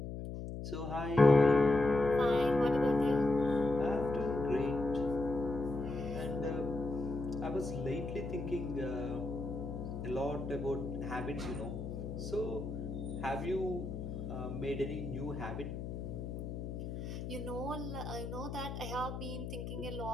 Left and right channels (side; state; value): left; noise; hum, 6 dB below the sound